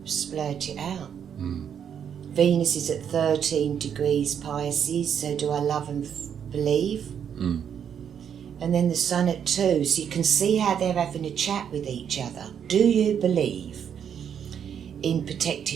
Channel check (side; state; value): left; quieter; 8.3 dB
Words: splurt it out. Venus is at 13 degrees Pisces, so do I love and believe? And then the sun at 2, so you can see how they're having a chat with each other. Do you believe in